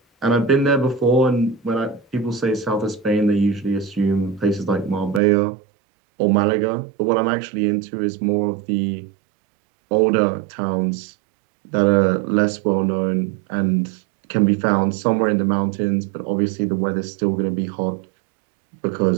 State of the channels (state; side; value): drops out; left; at 5.2 s